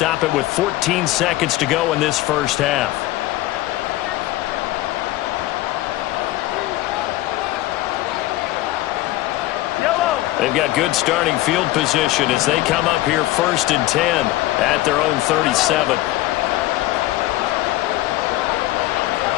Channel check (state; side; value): quieter; right; 16.7 dB